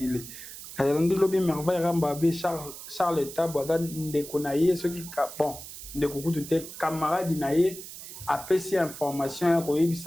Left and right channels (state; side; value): noise; right; hiss, 13 dB below the sound